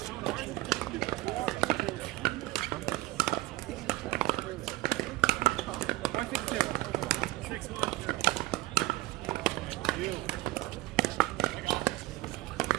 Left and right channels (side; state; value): left; quieter; 18.3 dB